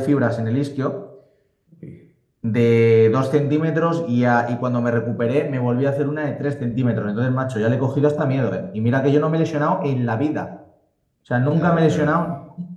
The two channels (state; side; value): identical; both; correlation 1.00